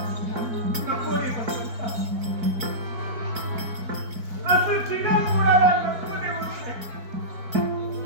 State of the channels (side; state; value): left; late; 4.1 ms